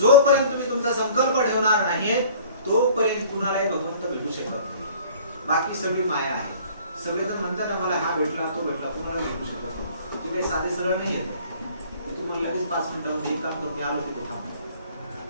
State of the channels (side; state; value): both; inverted; correlation -0.49